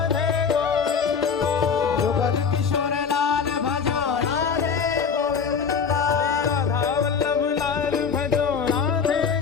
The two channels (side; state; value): right; quieter; 6.2 dB